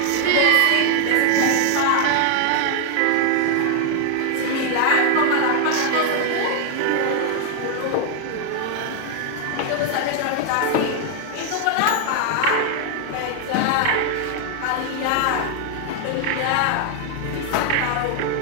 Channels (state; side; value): different; both; correlation 0.00